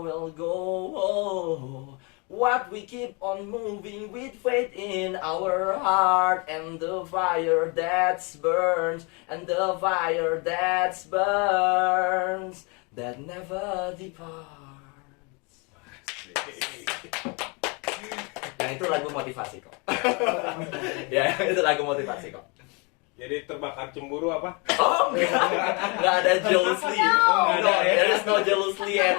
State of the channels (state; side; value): quieter; right; 31.2 dB